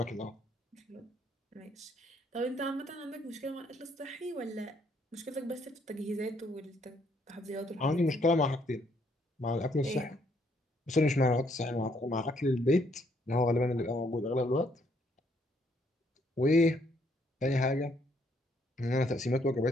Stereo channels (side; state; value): both; normal; correlation 0.69